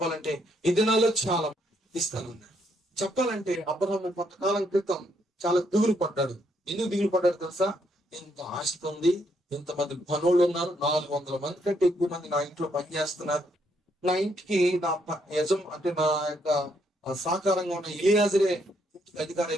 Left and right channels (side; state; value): both; normal; correlation 0.74